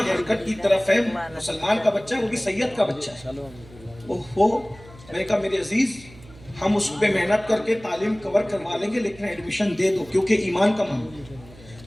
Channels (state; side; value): noise; right; hum, 21 dB below the sound